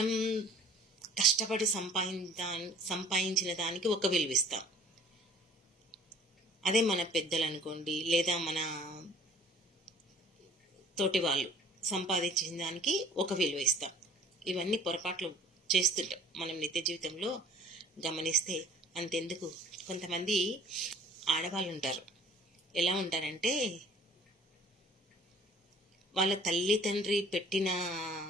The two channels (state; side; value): normal; both; correlation 0.52